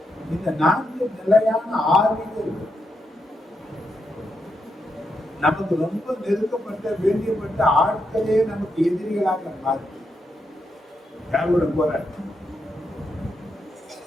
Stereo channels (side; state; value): both; normal; correlation 0.83